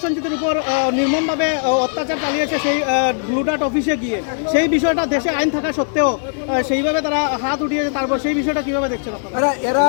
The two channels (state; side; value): silent; right; digital silence